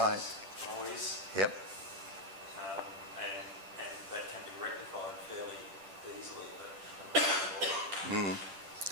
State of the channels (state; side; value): late; left; 10 ms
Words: Noise. Yep. And that can be rectified fairly easily.